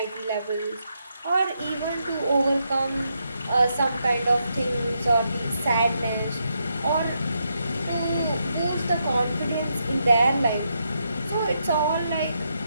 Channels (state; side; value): inverted; both; correlation -0.81